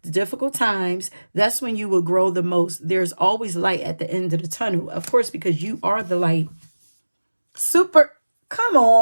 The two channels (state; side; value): inverted; both; correlation -1.00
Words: the difficult times. That's when you will grow the most. There's always light at the end of the tunnel. Of course, because you are the light. Super. Come